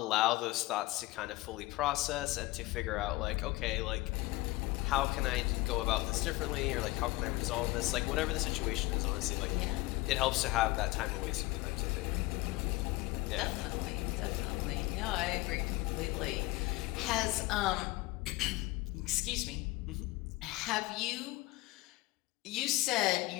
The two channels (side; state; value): right; quieter; 20.2 dB